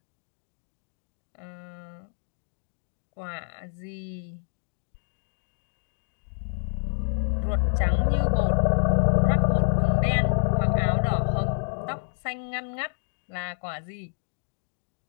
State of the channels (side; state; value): right; silent; 59 dB below the other